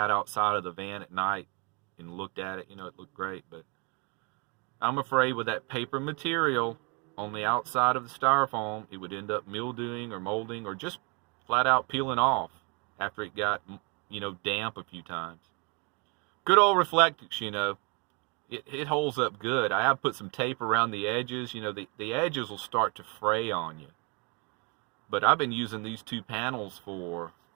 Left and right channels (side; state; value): left; quieter; 32.4 dB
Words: outside of the van at night and looked at it. It looked great. But I'm afraid with that paper material on the outside of the styrofoam, it would end up mildewing or molding or just flat out peeling off after it got damp a few times. Good old Reflectix, it holds up good. I have put some tape around the edges. The edges will start to fray on you. But I've been using these 2 panels for,